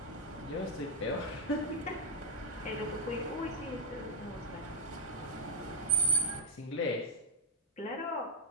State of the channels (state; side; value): normal; both; correlation -0.03